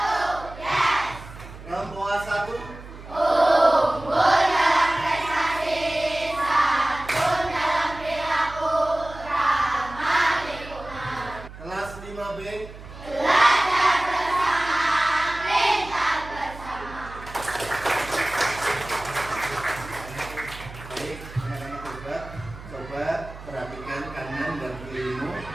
yes. Rempoa 1. Unggul dalam prestasi, santun dalam perilaku, ramah lingkungan. Kelas 5B. Belajar bersama, pintar bersama. Baik, anak-anak coba perhatikan kanan dan kirimu.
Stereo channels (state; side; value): noise; right; hum, 15 dB below the sound